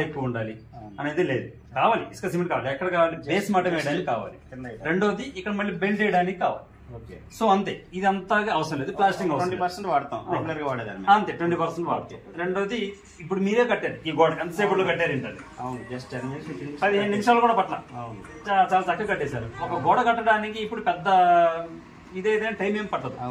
ఎక్కువ ఉండాలి అనేది లేదు. కావాలి ఇసుక సిమెంట్ కావాలి, ఎక్కడ కావాలి, బేస్ మటం వేయడానికి కావాలి. రెండోది ఇక్కడ మళ్ళీ బెల్ట్ వేయడానికి కావాలి. సో అంతే, ఇది అంతగా అవసరం లేదు. ప్లాస్టింగ్ 20% వాడతాం, రెగ్యులర్ గా వాడేదాన్ని అంతే 20% వాడతాం. రెండోది ఇప్పుడు మీరే కట్టారు ఈ గోడ, ఎంతసేపు కట్టారు ఏంటంటే 15 నిమిషాలు కూడా పట్ల చాలా చక్కగా కట్టేశారు. ఒక గోడ కట్టడానికి ఇప్పుడు పెద్ద ఇదేదైనా టైం ఏం పట్టదు.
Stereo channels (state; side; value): identical; both; correlation 1.00